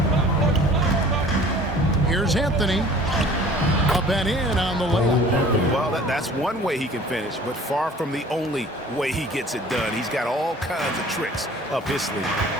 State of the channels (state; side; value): normal; both; correlation 0.48